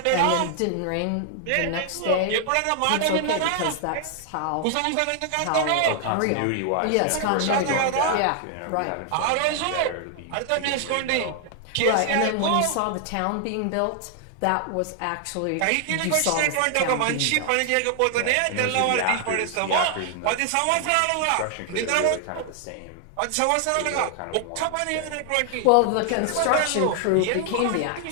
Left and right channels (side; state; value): both; different; correlation 0.00